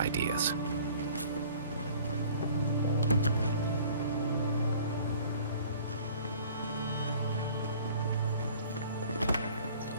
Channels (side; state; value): both; inverted; correlation -0.51